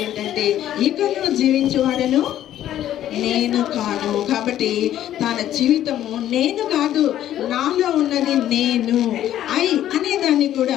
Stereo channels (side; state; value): right; quieter; 12.0 dB